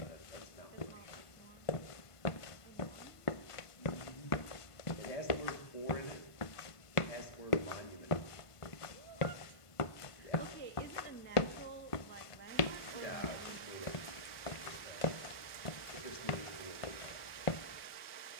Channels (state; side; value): late; right; 1.5 ms